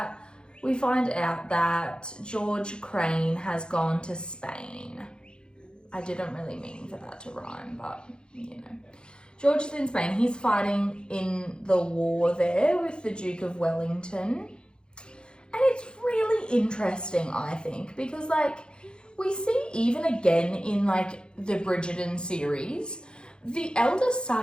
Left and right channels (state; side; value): late; right; 0.050 ms